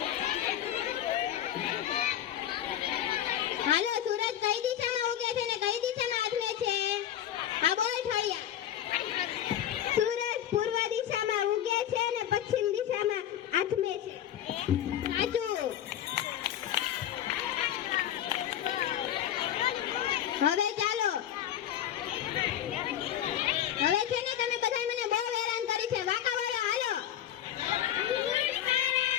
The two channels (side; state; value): right; quieter; 11.0 dB